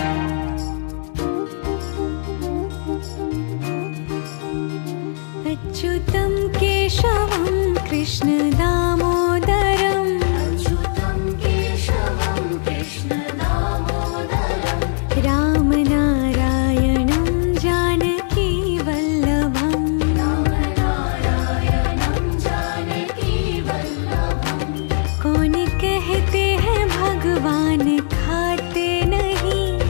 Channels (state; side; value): silent; right; 66 dB below the other